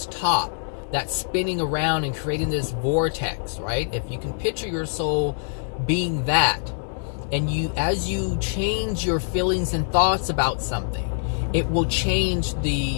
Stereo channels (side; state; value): right; silent; 62 dB below the other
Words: top that's spinning around and creating this vortex, right? If you can picture your soul being that, and as you change your feelings and thoughts about something, it will change